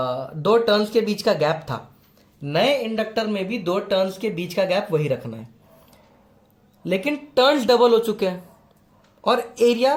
टर्न्स के बीच का गैप था, नए इंडक्टर में भी 2 टर्न्स के बीच का गैप वही रखना है। लेकिन टर्न्स डबल हो चुके हैं और एरिया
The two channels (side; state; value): both; identical; correlation 1.00